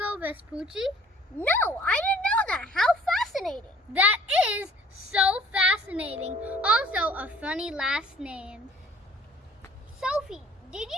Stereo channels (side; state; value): both; normal; correlation 0.55